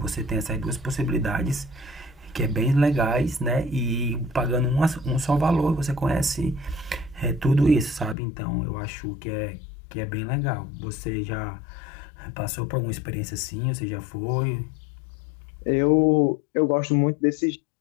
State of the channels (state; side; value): drops out; right; at 8.2 s